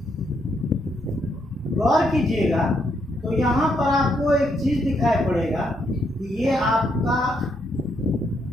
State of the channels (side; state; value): both; normal; correlation 0.76